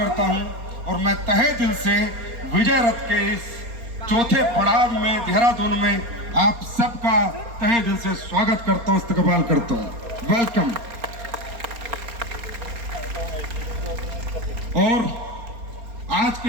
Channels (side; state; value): left; late; 4.3 ms